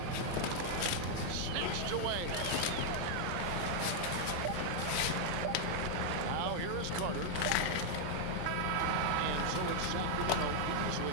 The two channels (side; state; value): both; different; correlation 0.00